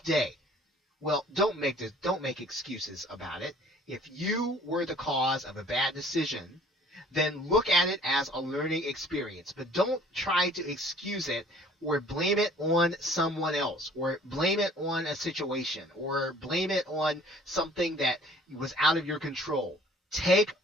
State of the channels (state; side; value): normal; both; correlation 0.54